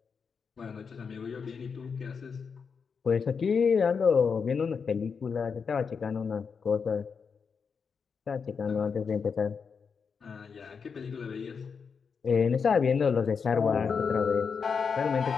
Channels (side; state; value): right; quieter; 5.8 dB